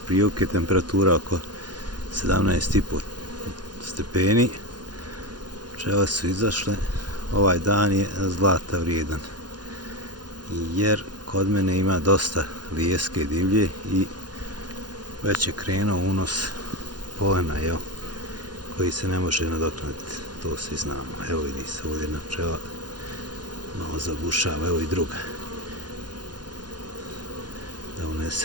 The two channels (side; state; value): left; late; 0.70 ms